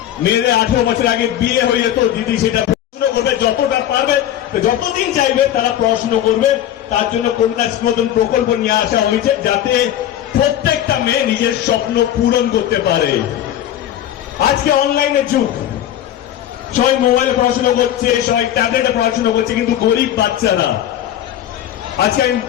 মেয়েদের 18 বছর আগে বিয়ে হয়ে যেত, দিদি সেটা পড়াশুনো করবে, যতটা পারবে, যতদিন চাইবে তারা পড়াশুনো করবে। তার জন্য কন্যাশ্রীর মতন প্রকল্প নিয়ে আসা হয়েছে, যাতে প্রত্যেকটা মেয়ে নিজের স্বপ্ন পূরণ করতে পারে। আজকে অনলাইনের যুগ, সবাই মোবাইলে পড়াশোনা করছে, সবাই ট্যাবলেটে পড়াশোনা করছে, কিন্তু গরিব বাচ্চারা, আজকে আমি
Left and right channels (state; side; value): quieter; right; 11.6 dB